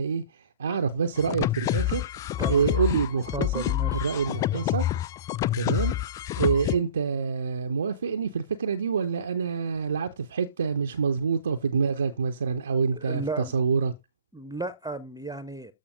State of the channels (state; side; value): inverted; both; correlation -0.47